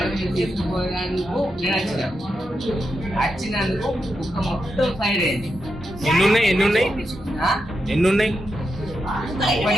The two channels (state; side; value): normal; both; correlation 0.86